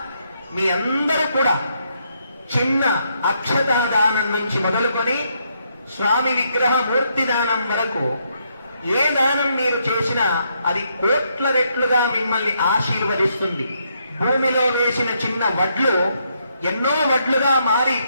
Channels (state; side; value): inverted; both; correlation -0.76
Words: మీ అందరూ కూడా చిన్న అక్షతాదానం నుంచి మొదలుకొని స్వామి విగ్రహ మూర్తి దానం వరకు ఏ దానం మీరు చేసినా అది కోట్ల రెట్లుగా మిమ్మల్ని ఆశీర్వదిస్తుంది. భూమిలో వేసిన చిన్న వడ్లు ఎన్నో వడ్లుగా మారి